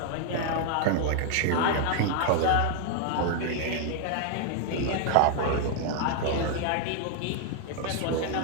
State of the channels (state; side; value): different; both; correlation 0.00